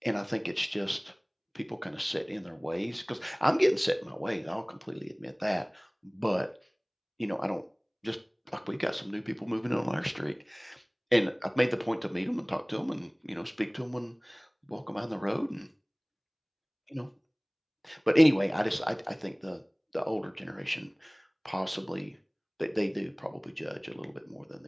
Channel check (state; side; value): identical; both; correlation 1.00